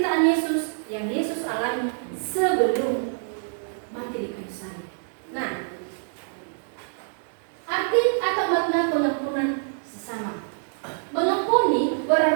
Yesus yang Yesus alami sebelum mati di kayu salib. Nah, arti atau makna pengampunan sesama. Mengampuni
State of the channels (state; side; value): silent; left; digital silence